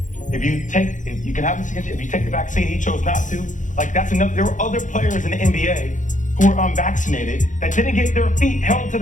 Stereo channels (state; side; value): late; right; 0.37 ms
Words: if you take the vaccine, he chose not to. Like, that's enough. There were other players in the NBA who were unvaccinated that didn't get their feet held to